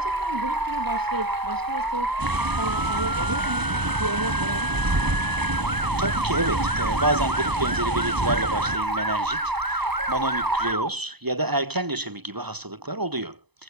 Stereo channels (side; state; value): left; late; 0.98 ms